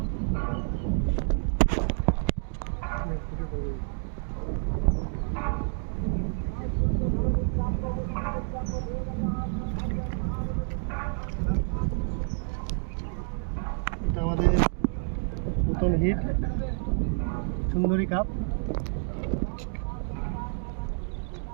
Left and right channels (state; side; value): silent; left; 59 dB below the other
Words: এটা আমাদের নতুন হিট সুন্দরী কাপ,